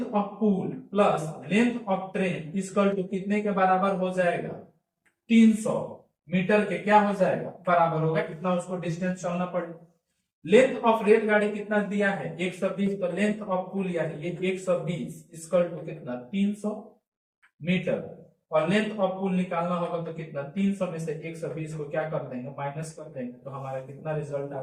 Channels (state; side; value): identical; both; correlation 1.00